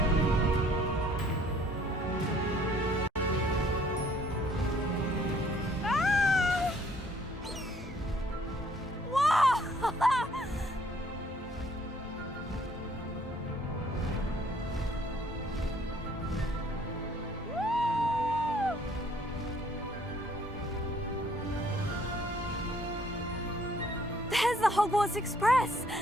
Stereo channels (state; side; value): normal; both; correlation 0.61